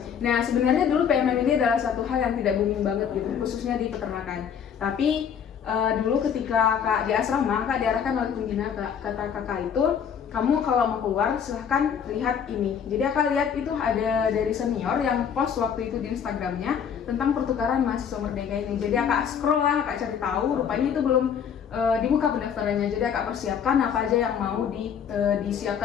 Nah, sebenarnya dulu PMM ini adalah satu hal yang tidak booming banget gitu, khususnya di peternakan. Tapi dulu ketika Kak di asrama, Kak diarahkan oleh pembina, kata Kakak itu, kamu kalau mau keluar silahkan lihat ini. Jadi Kakak lihat itu ada dari senior yang post waktu itu di Instagramnya tentang pertukaran mahasiswa Merdeka ini. Jadi Kakak scroll lah, Kakak cari tahu, rupanya itu belum dibuka pendaftarannya. Jadi Kakak persiapkan apa aja yang mau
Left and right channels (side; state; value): right; quieter; 7.8 dB